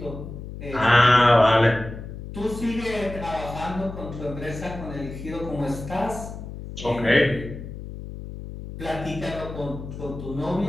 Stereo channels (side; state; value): left; noise; hum, 10 dB below the sound